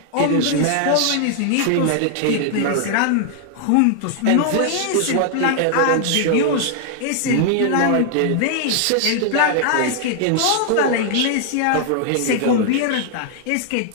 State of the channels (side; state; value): both; different; correlation 0.00